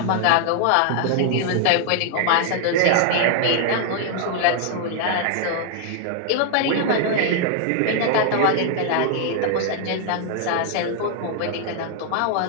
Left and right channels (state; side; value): different; both; correlation 0.00